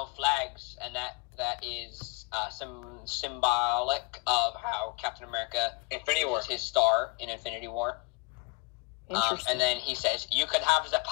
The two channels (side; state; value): right; quieter; 26.3 dB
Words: flags," and that is symbolic of how Captain America uses his star in Infinity War. And then he says, "You could have the